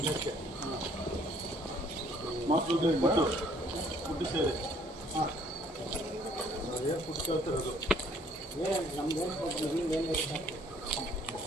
ಮಕ್ಕಳು ಫುಡ್ಡು ಸೇರಿ ಹಾಂ ಏನು ಫುಡ್ ಕೇಳ್ತಿರೋದು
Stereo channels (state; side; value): normal; both; correlation 0.61